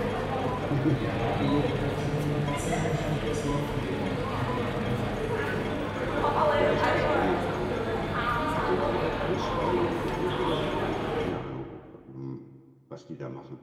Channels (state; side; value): identical; both; correlation 1.00